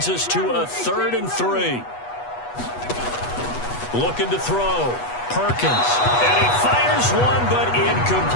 us to a 3rd and 3. Looking to throw. Perkins. And he fires one, but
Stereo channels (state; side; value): late; right; 8.2 ms